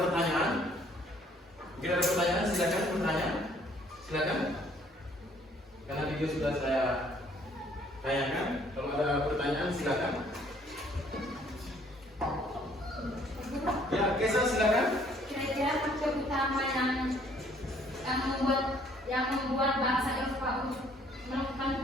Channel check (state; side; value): normal; both; correlation 0.61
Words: Mungkin ada pertanyaan, silakan bertanya. Silakan. Karena video sudah saya tayangkan. Kalau ada pertanyaan, silakan. Ya, Kesa silakan. Kira-kira faktor utama yang membuat bangsa Eropa untuk melakukan